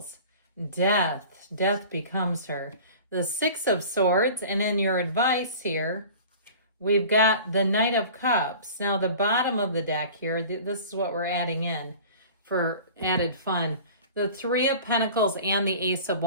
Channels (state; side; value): inverted; both; correlation -0.41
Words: Death. Death becomes her. The Six of Swords, and in your advice here, we've got the Knight of Cups. Now, the bottom of the deck here, this is what we're adding in for added fun. The Three of Pentacles and the Ace of